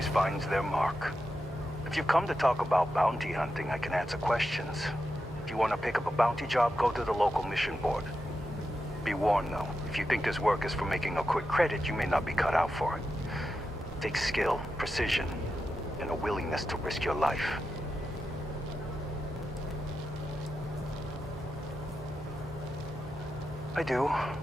finds their mark. If you've come to talk about bounty hunting, I can answer questions. If you want to pick up a bounty job, go to the local mission board. Be warned though, if you think this work is for making a quick credit, you may not be cut out for it. It takes skill, precision, and a willingness to risk your life. I do,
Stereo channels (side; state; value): both; normal; correlation 0.88